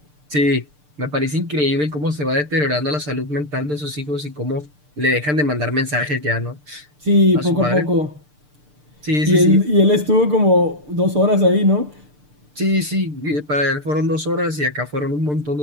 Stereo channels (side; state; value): left; late; 6.7 ms